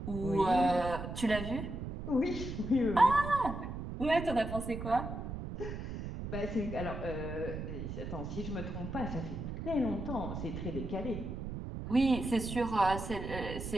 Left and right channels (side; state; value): right; noise; rumble, 6 dB below the sound